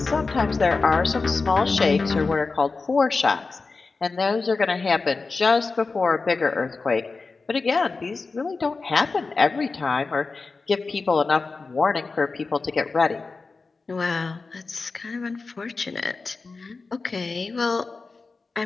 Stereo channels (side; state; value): right; quieter; 4.1 dB